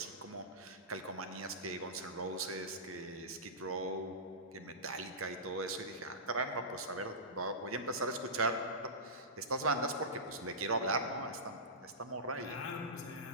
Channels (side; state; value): both; normal; correlation -0.20